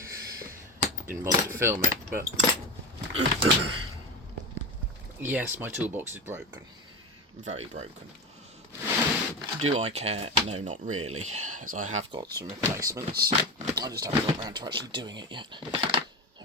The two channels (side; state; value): both; normal; correlation 0.24